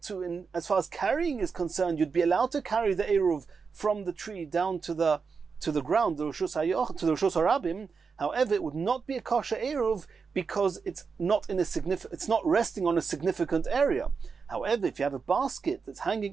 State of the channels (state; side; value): quieter; left; 5.3 dB